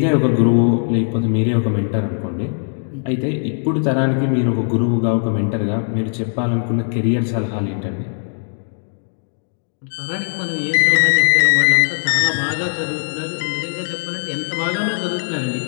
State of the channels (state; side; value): silent; right; 63 dB below the other